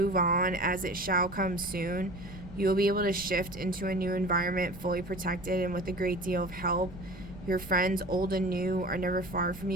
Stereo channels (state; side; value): noise; right; rumble, 15 dB below the sound